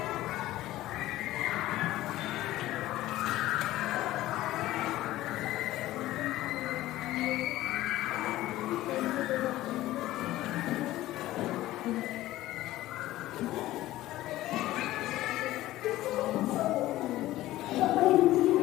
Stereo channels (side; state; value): right; quieter; 15.8 dB